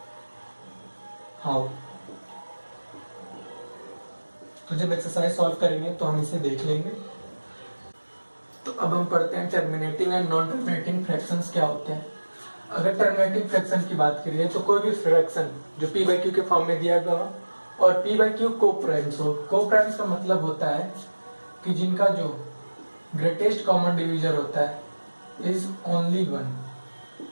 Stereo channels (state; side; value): inverted; both; correlation -1.00